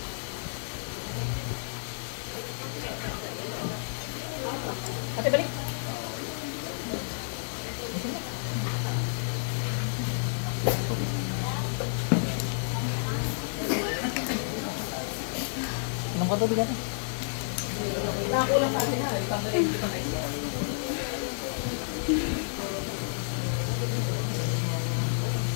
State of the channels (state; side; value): silent; right; digital silence